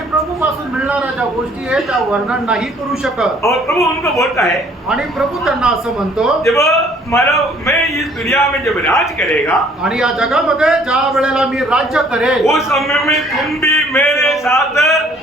प्रभू पासून मिळणाऱ्या ज्या गोष्टी आहेत त्या वर्णन नाही करू शकत. और प्रभु उनको बोलता है, आणि प्रभू त्यांना असं म्हणतो, जब मतलब मैं इस दुनिया में जब राज करेगा, आणि या जगामध्ये ज्या वेळेला मी राज्य करेल, उस समय में तुम भी मेरे साथ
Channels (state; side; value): normal; both; correlation 0.59